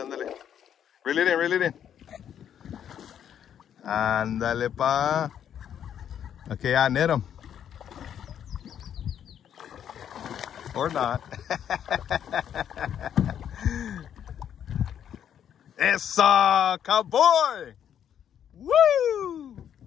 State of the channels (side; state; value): right; quieter; 9.3 dB